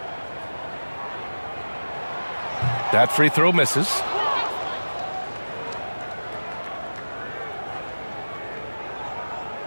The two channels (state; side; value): inverted; both; correlation -1.00